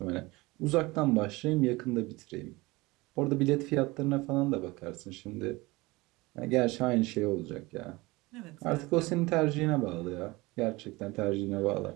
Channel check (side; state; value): left; quieter; 22.2 dB